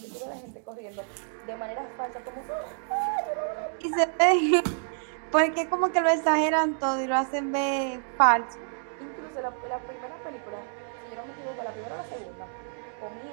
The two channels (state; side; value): silent; left; digital silence